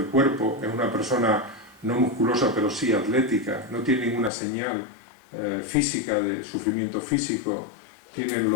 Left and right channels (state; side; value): drops out; right; at 4.3 s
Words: cuerpo, es una persona no musculosa pero sí atlética, no tiene ninguna señal física de sufrimiento físico, tiene